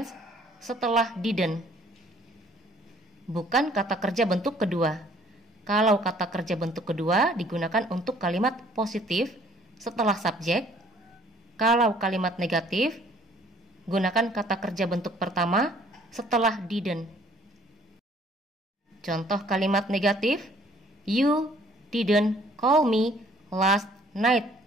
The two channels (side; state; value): both; normal; correlation 0.59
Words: setelah didn't. Bukan kata kerja bentuk kedua. Kalau kata kerja bentuk kedua digunakan untuk kalimat positif setelah subjek. Kalau kalimat negatif, gunakan kata kerja bentuk pertama setelah didn't. Contoh kalimat negatif, you didn't call me last night.